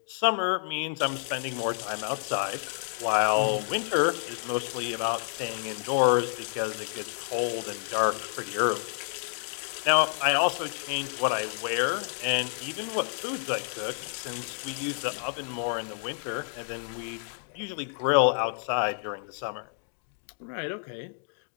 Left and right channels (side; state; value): right; silent; 58 dB below the other